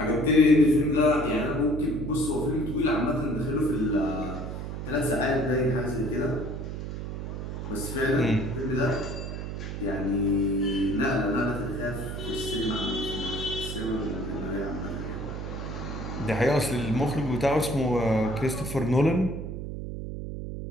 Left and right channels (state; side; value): noise; right; hum, 6 dB below the sound